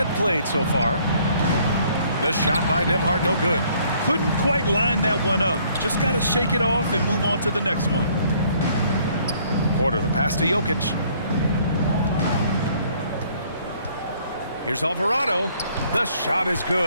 played so far. The shot by Nembhard, no good. Couldn't quite line that one up. Just got to shake it off and move on to the next one. Porter, the pass to Jokic. Here's Alvarado. The shot is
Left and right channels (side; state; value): both; inverted; correlation -0.62